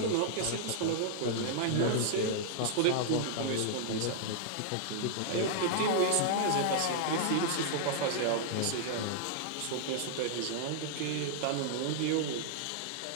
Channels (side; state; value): both; different; correlation -0.01